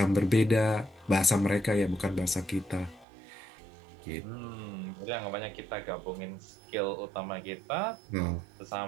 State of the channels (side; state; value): left; drops out; at 3.1 s